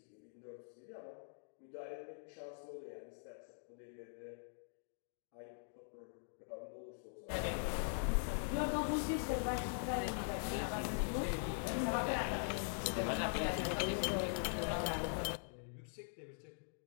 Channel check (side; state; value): right; silent; digital silence